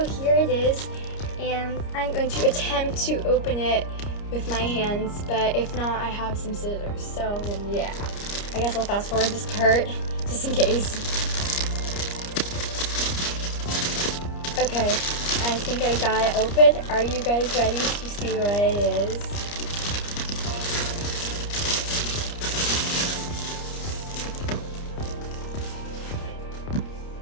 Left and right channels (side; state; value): right; late; 29 ms